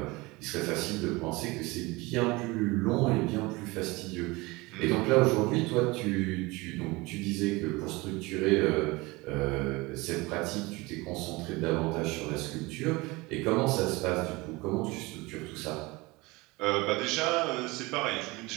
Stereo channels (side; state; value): left; quieter; 23.2 dB